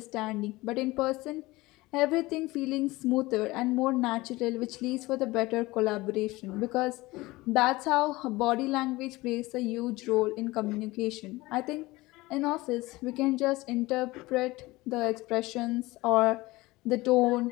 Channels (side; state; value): right; quieter; 20.5 dB